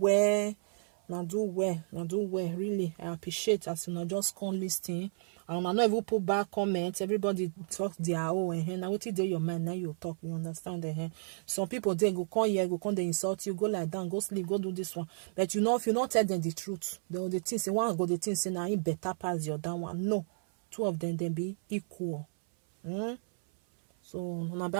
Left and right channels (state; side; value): silent; left; 56 dB below the other